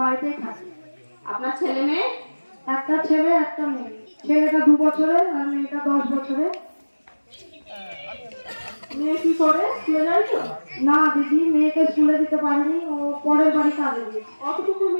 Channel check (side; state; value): both; inverted; correlation -1.00